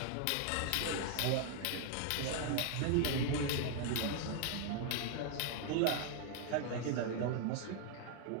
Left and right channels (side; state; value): both; different; correlation 0.00